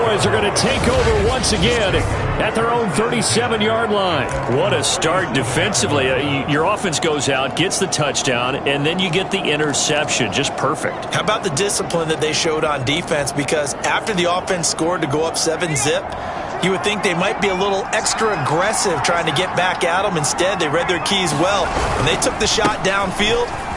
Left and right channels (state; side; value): identical; both; correlation 1.00